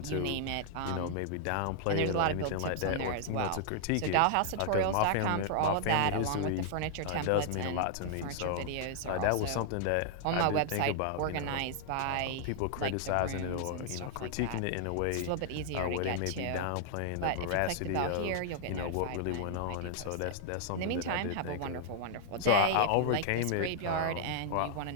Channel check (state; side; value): different; both; correlation 0.00